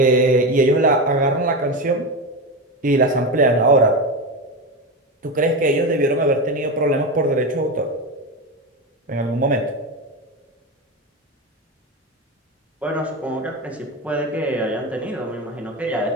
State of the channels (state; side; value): normal; both; correlation 0.18